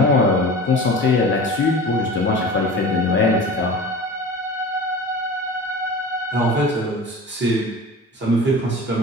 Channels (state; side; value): normal; both; correlation 0.37